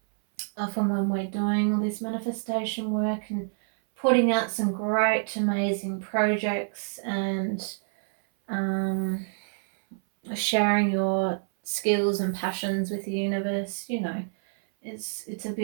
often when we're doing all this manifestation work and putting out some great, amazing projects and sharing your skills and passions with the universe, you know, it's a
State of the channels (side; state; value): left; silent; 60 dB below the other